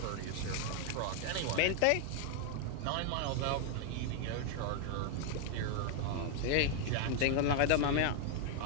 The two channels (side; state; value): both; different; correlation 0.01